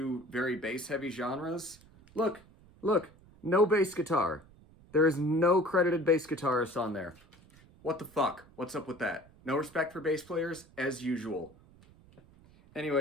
very bass heavy genres, look, look, no bass guitar. There is no credited bass guitarist on there. What the fuck? What's up with that? No respect for bass players, as usual.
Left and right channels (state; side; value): noise; right; rumble, 26 dB below the sound